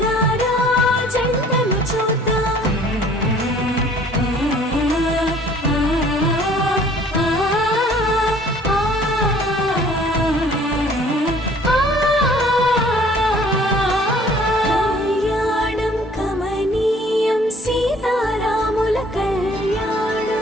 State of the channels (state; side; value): normal; both; correlation 0.55